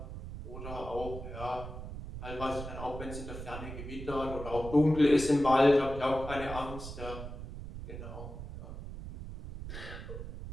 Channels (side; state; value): right; noise; rumble, 9 dB below the sound